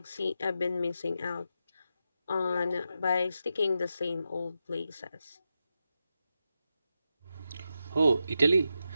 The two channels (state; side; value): inverted; both; correlation -0.87